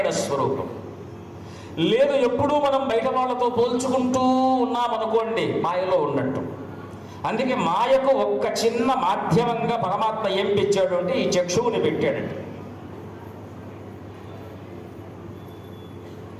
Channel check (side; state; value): both; identical; correlation 1.00